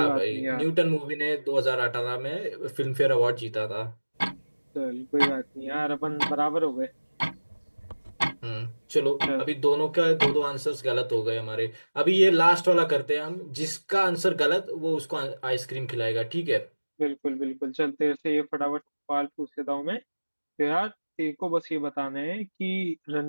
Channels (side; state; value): both; inverted; correlation -1.00